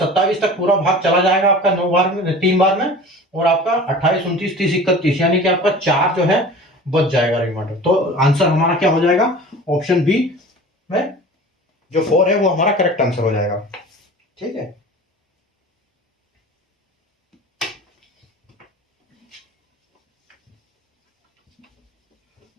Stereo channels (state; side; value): normal; both; correlation 0.39